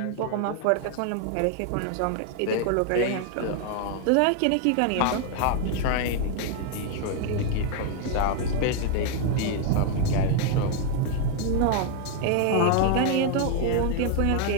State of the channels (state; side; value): different; both; correlation 0.01